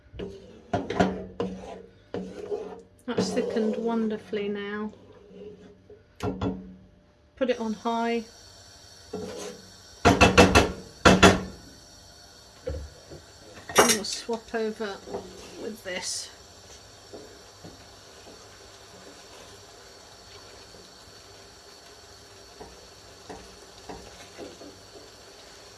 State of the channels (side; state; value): both; identical; correlation 1.00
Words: That's thickened wonderfully now. Put it on high. And we'll swap over with this.